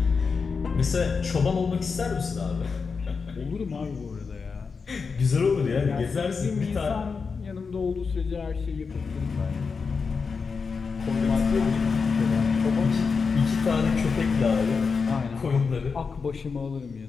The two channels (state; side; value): quieter; right; 5.1 dB